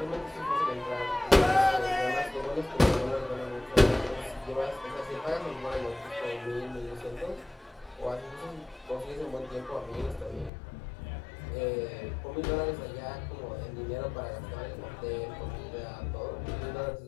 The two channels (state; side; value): drops out; right; at 10.5 s